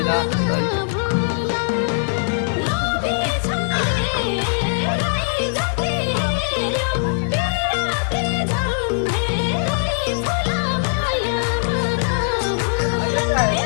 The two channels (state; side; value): silent; right; 65 dB below the other